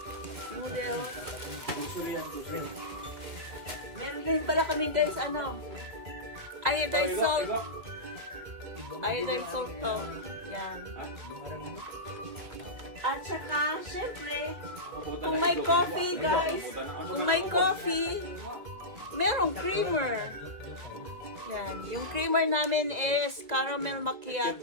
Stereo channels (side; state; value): left; late; 1.9 ms